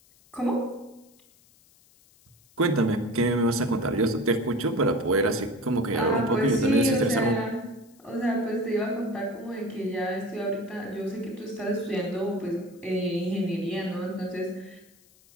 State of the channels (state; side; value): noise; left; hiss, 29 dB below the sound